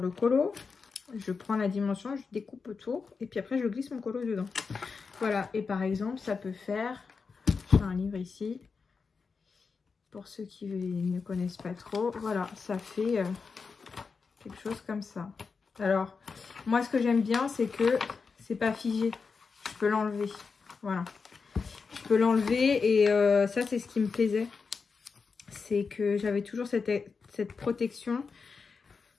colo. Je prends la dimension, je découpe autour. Et puis après, je glisse mon colo dedans. Voilà. Et par exemple, ça peut faire... J'ai un livre ici. Pour ceux qui ne connaissent pas trop. Voilà, ça fait quelque chose comme ça. Alors, moi, ce que j'aime bien, c'est que c'est pas figé. Je peux l'enlever. Voilà. Je peux l'enlever et ça, c'est ce qui me plaisait. C'est que j'avais toujours cette protection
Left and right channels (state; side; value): quieter; right; 5.1 dB